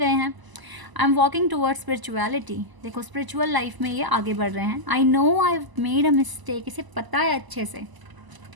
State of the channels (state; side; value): late; left; 1.0 ms